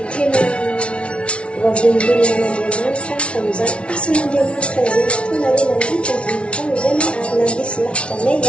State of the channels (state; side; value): late; right; 0.060 ms